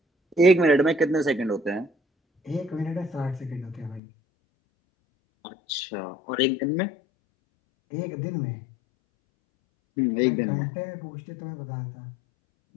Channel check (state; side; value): drops out; right; at 4.0 s